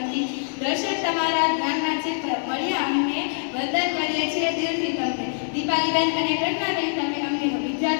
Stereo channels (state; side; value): silent; right; 55 dB below the other